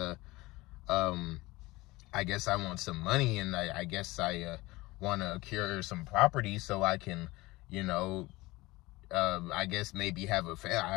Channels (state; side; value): quieter; right; 20.7 dB